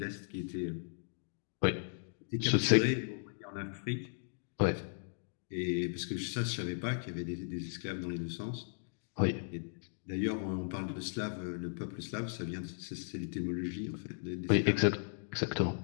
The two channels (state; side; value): silent; right; digital silence